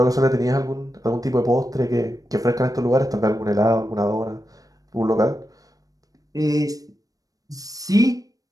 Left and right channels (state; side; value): late; left; 0.17 ms